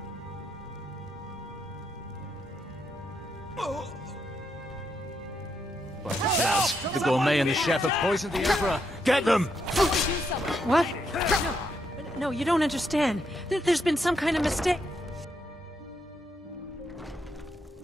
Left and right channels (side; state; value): both; normal; correlation 0.79